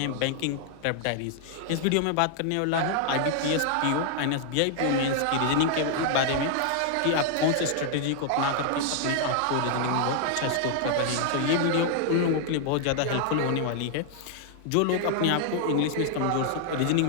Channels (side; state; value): both; different; correlation 0.00